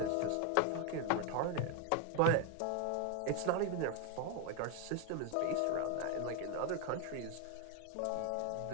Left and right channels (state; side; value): different; both; correlation 0.01